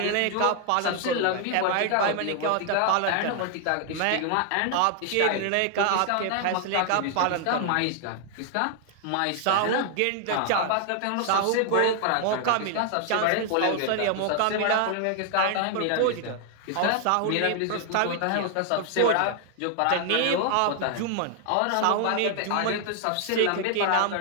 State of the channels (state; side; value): different; both; correlation 0.00